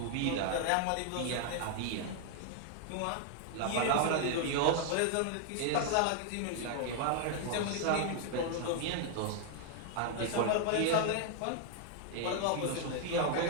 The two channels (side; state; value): both; different; correlation 0.00